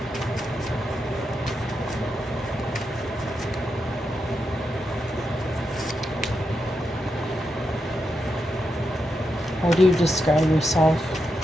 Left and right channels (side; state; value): both; normal; correlation 0.85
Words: How do you describe yourself?